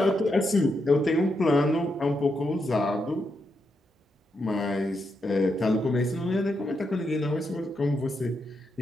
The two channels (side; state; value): both; normal; correlation 0.82